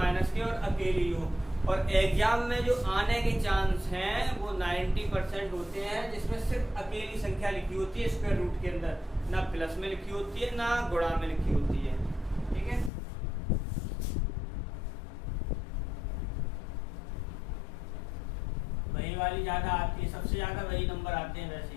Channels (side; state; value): right; drops out; at 12.9 s